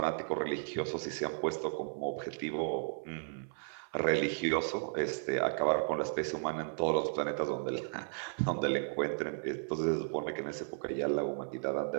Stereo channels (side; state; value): left; silent; 55 dB below the other